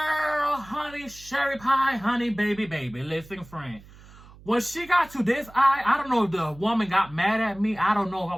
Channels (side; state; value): right; noise; hum, 22 dB below the sound